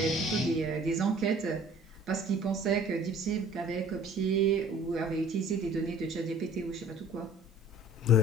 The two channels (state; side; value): normal; both; correlation 0.50